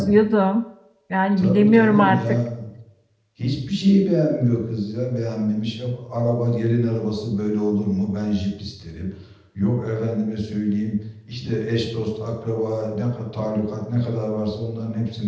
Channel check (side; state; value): both; identical; correlation 1.00